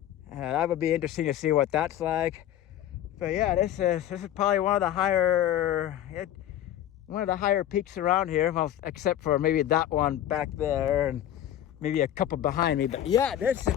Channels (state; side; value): quieter; right; 11.8 dB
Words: That would be interesting to see what that's like. But yeah, this is probably one of the higher peaks around here. Well, except for maybe that one back there and maybe a couple behind me. But yeah, this